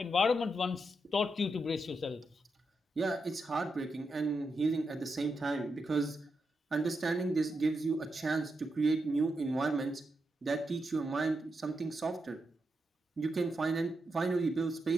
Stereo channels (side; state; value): both; normal; correlation 0.85